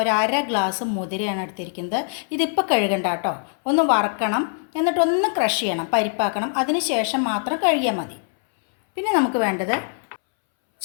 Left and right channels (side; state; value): right; silent; 64 dB below the other